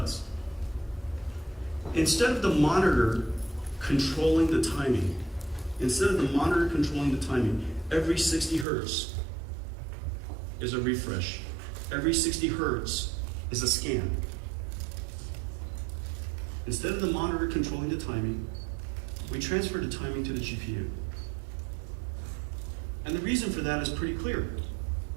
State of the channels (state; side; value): drops out; left; at 8.7 s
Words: Instead of the monitor controlling the timing, instead of the monitor controlling the timing, every 60 hertz is a refresh. Every 60 hertz is a scan. Instead of the monitor controlling the timing, we transfer the timing to the GPU. And the reason for that is pretty clear.